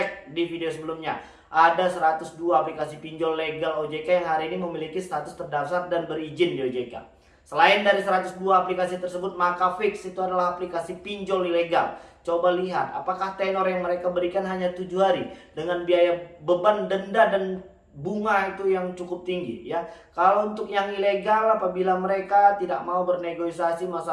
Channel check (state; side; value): identical; both; correlation 1.00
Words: di video sebelumnya. Ada 102 aplikasi pinjol legal OJK yang hari ini memiliki status terdaftar dan berizin di OJK. Selain dari 102 aplikasi tersebut, maka fix itu adalah aplikasi pinjol ilegal. Coba lihat apakah tenor yang mereka berikan hanya 7 hari dengan biaya beban denda dan bunga itu yang cukup tinggi ya. Kalau untuk yang ilegal, apabila mereka tidak mau bernegosiasi